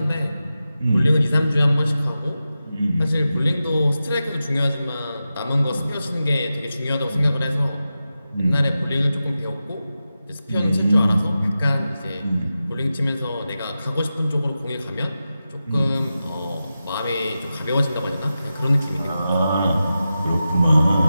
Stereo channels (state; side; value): inverted; both; correlation -0.92